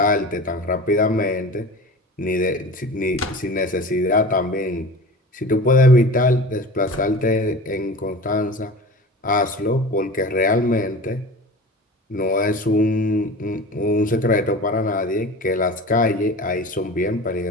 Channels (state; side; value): normal; both; correlation 0.35